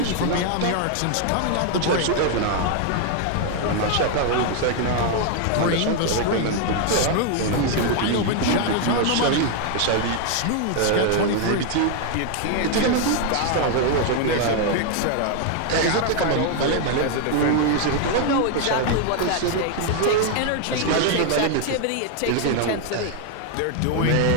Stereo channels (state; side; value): different; both; correlation 0.00